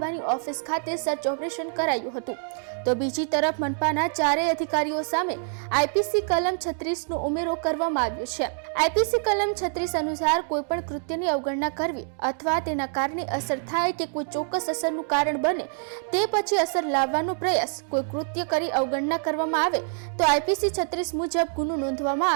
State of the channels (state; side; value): silent; left; 61 dB below the other